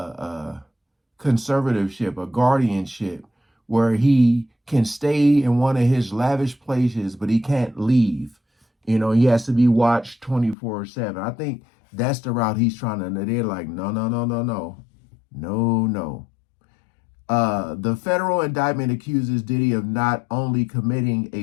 conservatorship, a guardianship, where he can stay in one of his lavish places, but he can't leave. You know, he has to be watched 24/7. I think that's the route he's trying to. They're like, no, no, no, no, no, no, no. The federal indictment accuses Diddy of not only committing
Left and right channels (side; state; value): right; drops out; at 10.6 s